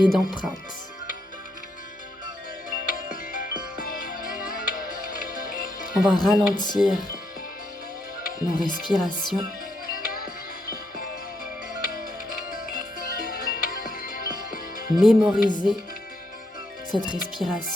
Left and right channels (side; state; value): both; normal; correlation 0.78